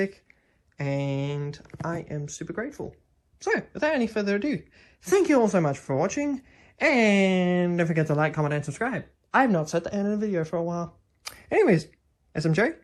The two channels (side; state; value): both; identical; correlation 1.00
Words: and I am super grateful. So, without any further ado, thank you all so much for watching, and don't forget to like, comment, and subscribe. I have not set the end of the video for a while. Anyways, SMJ,